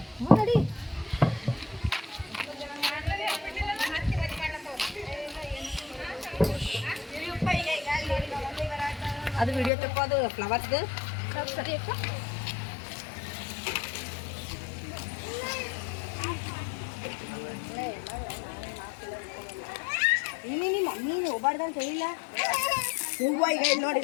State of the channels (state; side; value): drops out; right; at 9.7 s